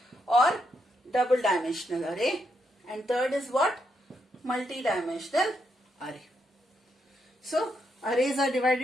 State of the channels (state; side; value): normal; both; correlation 0.79